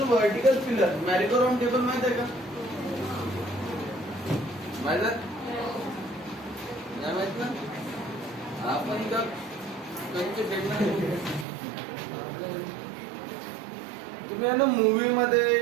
vertical pillar. merry-go-round table माहित आहे का? माहित आहे? नाही माहित ना? आपण का कंचे फेकणार? तुम्ही ना मूवी मध्ये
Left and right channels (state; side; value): drops out; left; at 11.5 s